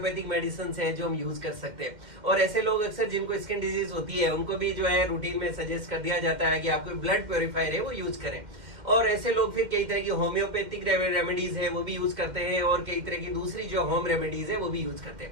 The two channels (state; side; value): late; left; 2.1 ms